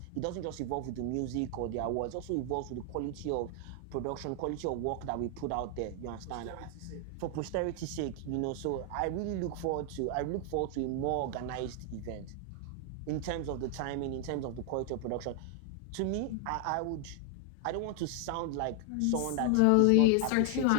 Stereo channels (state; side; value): different; both; correlation 0.00